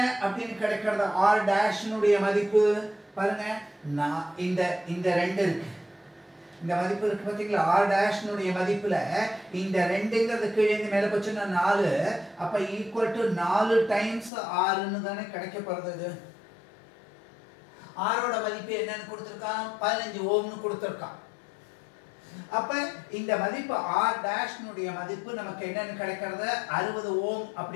அப்படின்னு கிடைக்கிறது? r டேஷ்னுடைய மதிப்பு பாருங்க, இந்த 2 இருக்கு, இந்த மதிப்பு இருக்கு பாத்தீங்களா? r டேஷ்னுடைய மதிப்புல இந்த 2ங்கிறது கீழே இருந்து மேல போச்சுன்னா 4, அப்ப ஈக்குவல் டு 4 டைம்ஸ் r ன்னு தானே கிடைக்க போறது. r ஓட மதிப்பு என்னன்னு கொடுத்திருக்கான்? 15 ஓம்னு கொடுத்திருக்கான். அப்ப இந்த மதிப்பு r டேஷ்னுடைய மதிப்பு நமக்கு என்னன்னு கிடைக்கிறது? 60 ஓம்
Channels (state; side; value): drops out; right; at 14.3 s